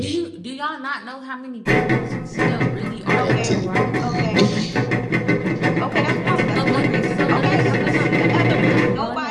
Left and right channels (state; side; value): identical; both; correlation 1.00